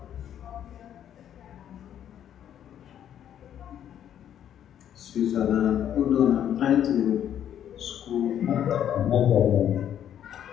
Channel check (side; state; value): right; quieter; 10.1 dB